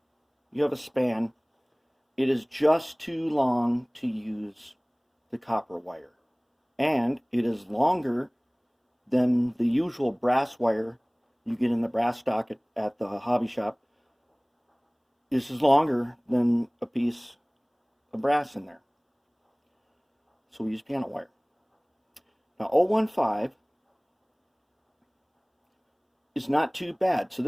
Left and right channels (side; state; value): both; identical; correlation 1.00